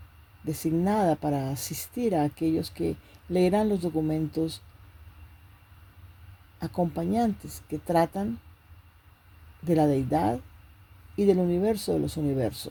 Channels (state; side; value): identical; both; correlation 1.00